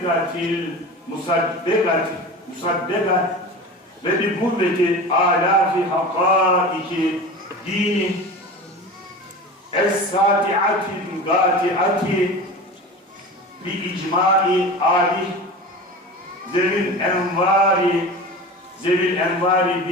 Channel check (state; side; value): normal; both; correlation 0.33